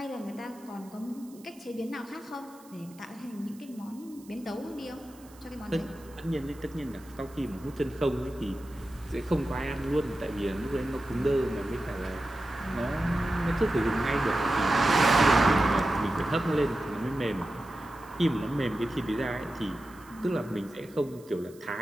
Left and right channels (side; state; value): right; noise; hiss, 25 dB below the sound